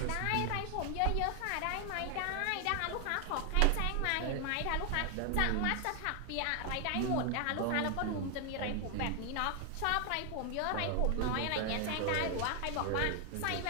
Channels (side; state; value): both; different; correlation 0.00